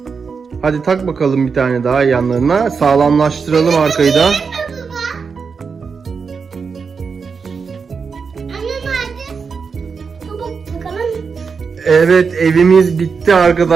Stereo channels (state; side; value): quieter; left; 5.5 dB